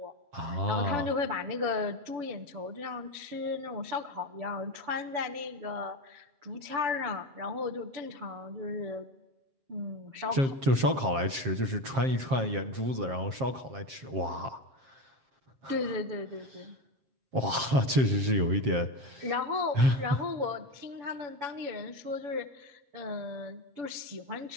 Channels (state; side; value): late; left; 7.5 ms